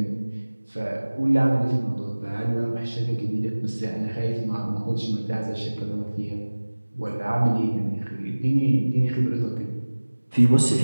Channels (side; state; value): both; inverted; correlation -1.00